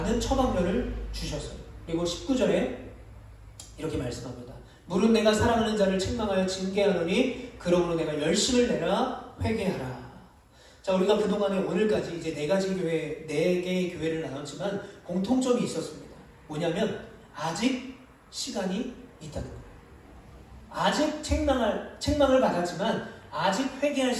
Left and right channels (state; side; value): identical; both; correlation 1.00